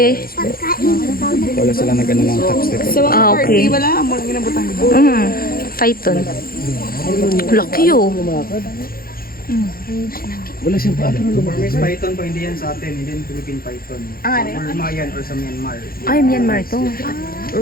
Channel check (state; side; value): late; right; 0.43 ms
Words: Wala sila nag-ano ng tax te po. Sa mga okay. party, wala amo lang ginabutang. Python. Laki, oh. Wala siyang pala. Burmese python po, hindi yan sa atin, hindi yan Philippine python. Burma yan or sa Myanmar. Ay, Myanmar to.